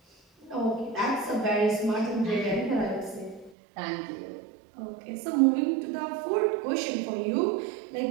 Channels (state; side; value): drops out; left; at 3.6 s